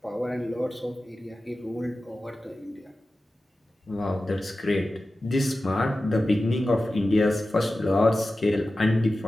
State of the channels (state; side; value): normal; both; correlation 0.94